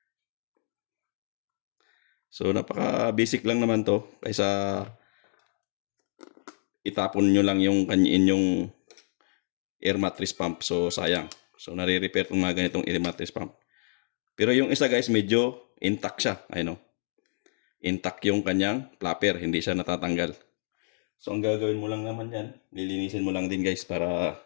So, napaka-basic lang naman to. Kaysa itapon nyo lang yung inyong air mattress pump. So, sayang. So, nare-repair itong mga ganitong air mattress pump. Pero yung isa guys, medyo intact siya. Ayun o. Intact yung kanyang flapper. Hindi siya natatanggal. So, ang gagawin mo lang naman yan, lilinisin mo lang din guys para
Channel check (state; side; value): silent; right; 59 dB below the other